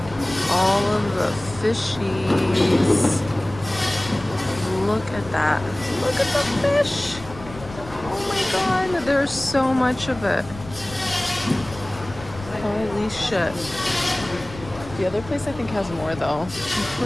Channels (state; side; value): noise; left; rumble, 16 dB below the sound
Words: All of the fishies. Look at that. Look at the fish. Oh my God, there's so much of it. Holy shit. The other place I think has more though. I'm